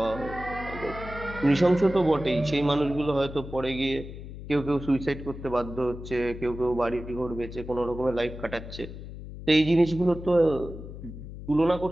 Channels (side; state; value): left; noise; hum, 11 dB below the sound